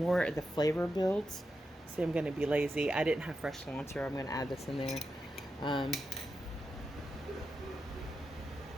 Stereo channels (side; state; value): both; normal; correlation 0.88